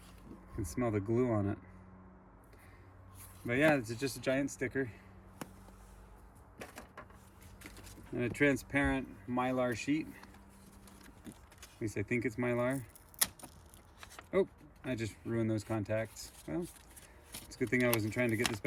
can smell the glue on it. But yeah, it's just a giant sticker. And a transparent mylar sheet. At least I think it's mylar. Oh, I just ruined those contacts. Well, it's a good thing I wasn't trying to get this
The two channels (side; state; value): both; identical; correlation 1.00